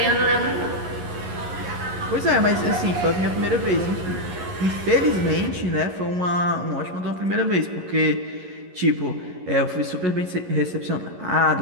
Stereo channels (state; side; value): late; left; 11 ms